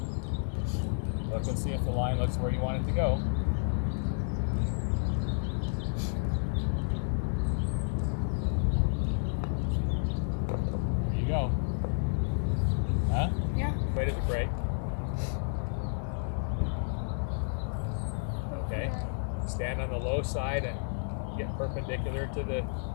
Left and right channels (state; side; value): silent; right; digital silence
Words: Look and see if the line looks where you want it to go. There you go. Huh? Yeah. Weight of the brake. Okay. Stand on the low side and get perpendicular to the